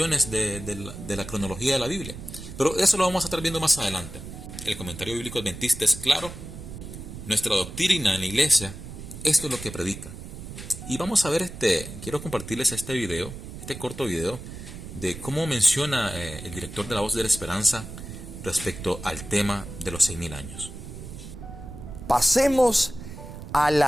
de la cronología de la Biblia. Pero eso lo vamos a estar viendo más adelante. El comentario bíblico adventista es claro Nuestra doctrina en la iglesia, esto es lo que predica. Y vamos a ver quiero compartirles este corto video, de cómo menciona el director de La Voz de la Esperanza respecto al tema de los 6.000 años. Pasemos a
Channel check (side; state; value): right; noise; rumble, 11 dB below the sound